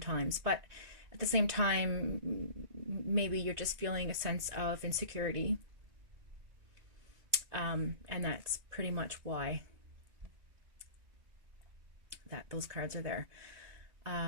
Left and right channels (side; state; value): left; late; 2.6 ms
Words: but at the same time, maybe you're just feeling a sense of insecurity, and that's pretty much why those cards are there.